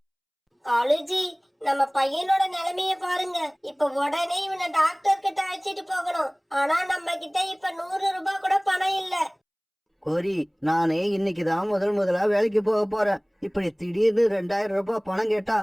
காலுஜி, நம்ம பையனோட நிலைமைய பாருங்க. இப்ப உடனே இவனை டாக்டர் கிட்ட அழைச்சிட்டு போகணும். ஆனா நம்ம கிட்ட இப்ப 100 ரூபாய் கூட பணம் இல்ல. கோரி, நானே இன்னைக்கு தான் முதலா வேலைக்கு போக போறேன். இப்படி திடீர்னு 2000 ரூபாய் பணம் கேட்டா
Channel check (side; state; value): both; identical; correlation 1.00